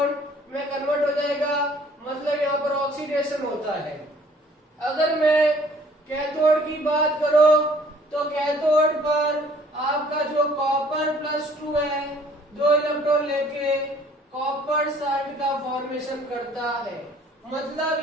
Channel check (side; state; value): both; normal; correlation 0.57